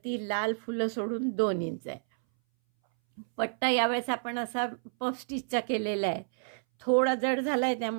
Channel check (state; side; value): silent; left; 58 dB below the other